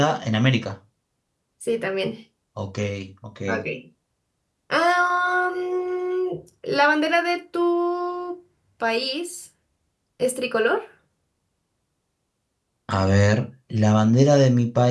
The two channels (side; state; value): both; identical; correlation 1.00